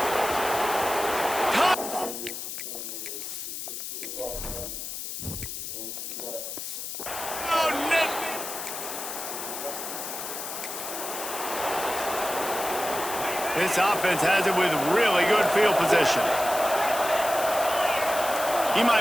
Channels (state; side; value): noise; left; hiss, 6 dB below the sound